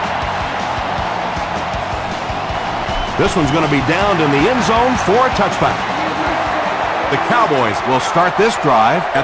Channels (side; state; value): both; identical; correlation 1.00